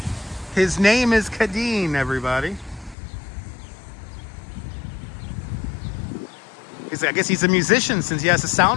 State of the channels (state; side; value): drops out; right; at 3.0 s